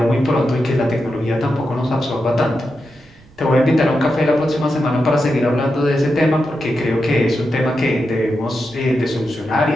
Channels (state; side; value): noise; right; rumble, 27 dB below the sound